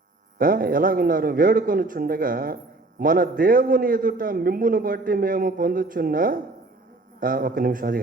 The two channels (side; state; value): left; quieter; 3.1 dB